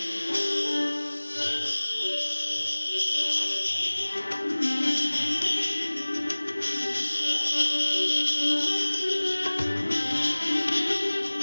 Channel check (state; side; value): inverted; both; correlation -1.00